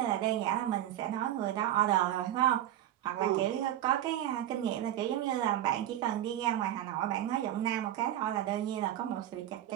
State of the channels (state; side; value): quieter; left; 12.3 dB